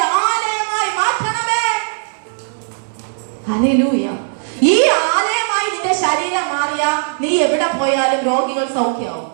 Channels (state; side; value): silent; left; digital silence